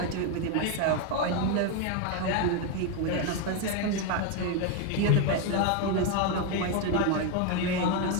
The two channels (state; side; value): different; both; correlation 0.02